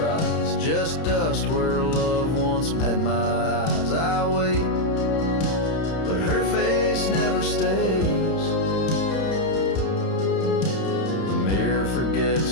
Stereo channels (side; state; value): right; late; 31 ms